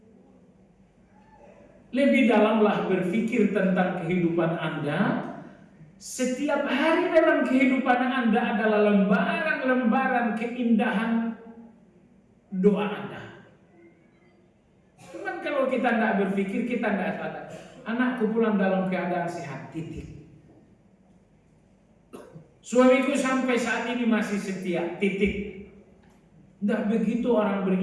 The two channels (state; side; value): identical; both; correlation 1.00